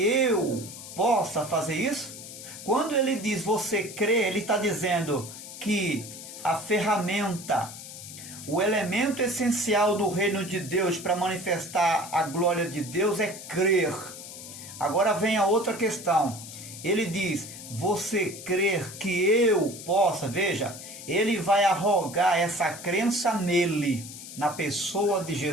eu possa fazer isso? Quando ele diz você crê, ele está dizendo que a ferramenta, o elemento essencial do reino de Deus para manifestar a glória de Deus é crer. Agora vem a outra questão. Ele diz, você crer que eu possa, veja, ele vai arrogar essa crença nele, na pessoa de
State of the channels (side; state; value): left; noise; hiss, 13 dB below the sound